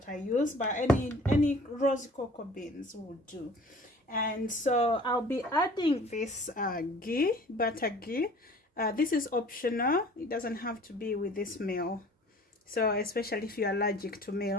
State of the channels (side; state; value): both; normal; correlation 0.48